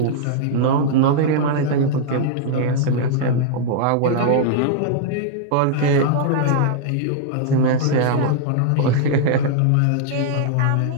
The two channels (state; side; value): different; both; correlation -0.01